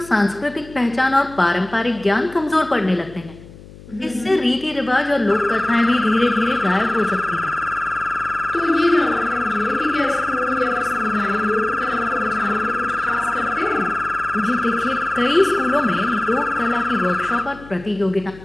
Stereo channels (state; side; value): noise; left; hum, 19 dB below the sound